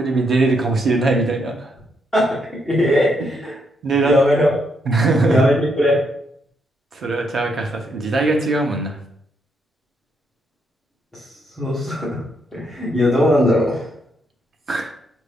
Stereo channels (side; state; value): both; normal; correlation 0.77